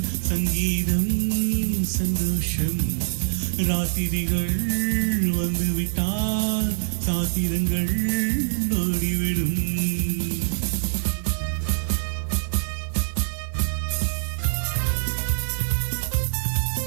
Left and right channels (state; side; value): silent; left; digital silence